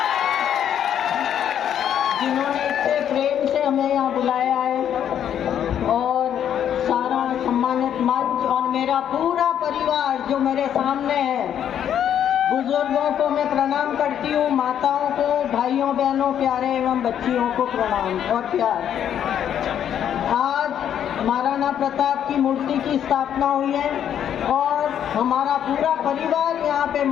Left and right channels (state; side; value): quieter; right; 9.6 dB